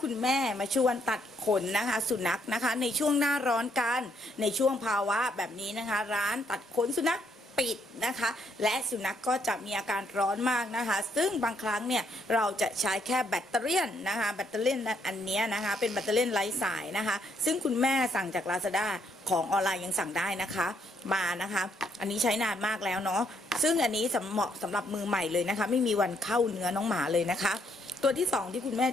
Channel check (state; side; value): normal; both; correlation 0.72